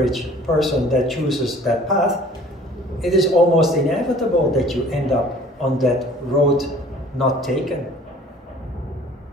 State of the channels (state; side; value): normal; both; correlation 0.51